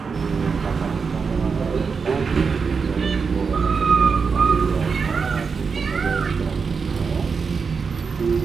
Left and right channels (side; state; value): left; quieter; 5.4 dB